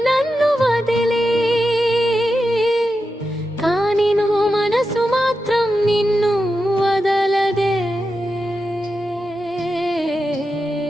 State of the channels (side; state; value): both; normal; correlation 0.89